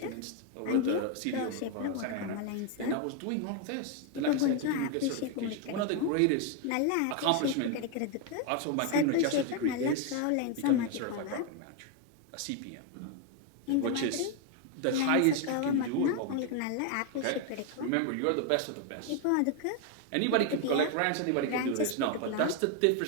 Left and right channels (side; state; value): both; different; correlation 0.01